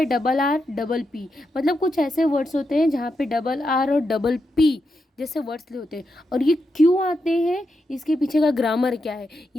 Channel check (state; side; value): normal; both; correlation 0.85